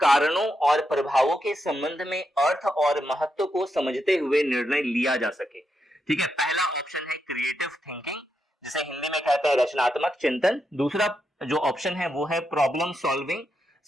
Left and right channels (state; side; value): normal; both; correlation 0.83